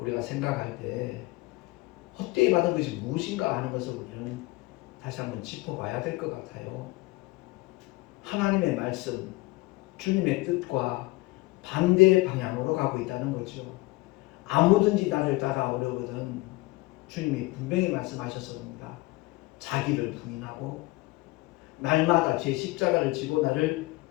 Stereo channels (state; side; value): quieter; right; 21.8 dB